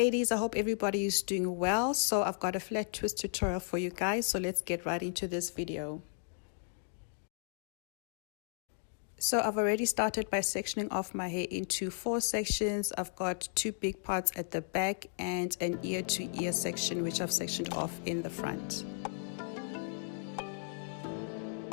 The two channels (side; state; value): right; silent; digital silence